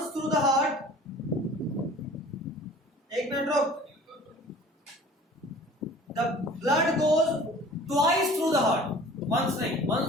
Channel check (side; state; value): both; normal; correlation 0.46